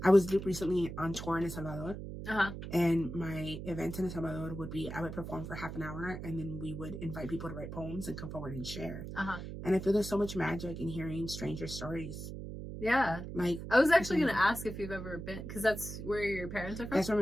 I was recently on tour in El Salvador. And my event in El Salvador would be, I would perform for half an hour and then we would invite people to write poems and come forward and share. And I feel there's so much magic in hearing stranger stories. Yeah. Like, I was actually going to ask if you've ever been, because that's where your parents are from? That's where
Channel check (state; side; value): noise; right; hum, 8 dB below the sound